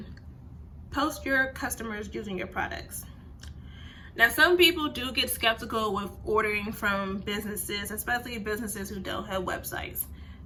post your customers using your products. Now, some people do get skeptical with ordering from businesses, especially businesses who don't have websites.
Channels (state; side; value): identical; both; correlation 1.00